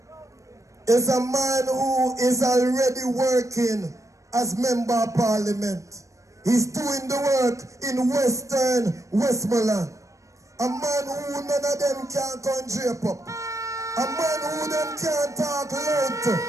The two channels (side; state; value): left; late; 0.15 ms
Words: is a man who is already working as Member of Parliament. He's doing the work in Western Westmoreland. A man who none of them can come drape up. A man who them can't talk loud to.